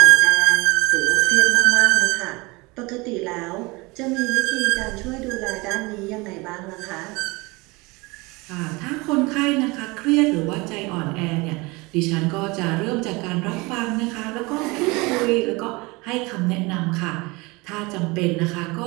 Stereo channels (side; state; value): left; quieter; 24.7 dB